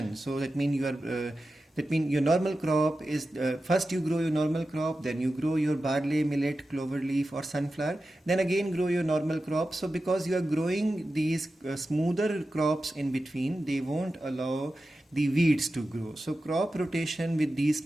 so that means your normal crop is first you grow your normal crop, then you grow your barley, millet, clover leaf or sunflower, then again grow your normal crop. So because you are growing these smoother crops in between, they won't allow the weeds to grow. So crop rotation with these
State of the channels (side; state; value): both; normal; correlation 0.93